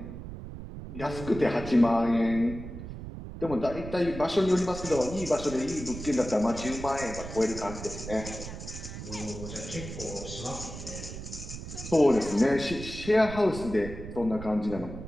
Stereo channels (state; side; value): noise; right; rumble, 10 dB below the sound